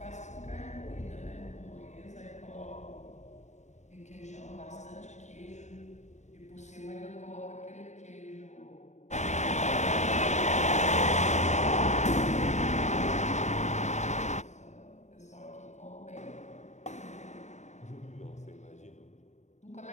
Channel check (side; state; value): right; late; 0.34 ms